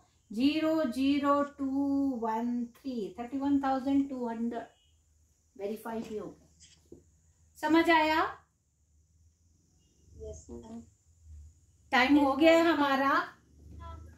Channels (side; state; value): both; identical; correlation 1.00